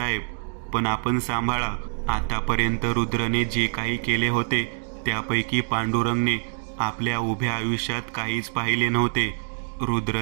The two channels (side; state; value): left; silent; 62 dB below the other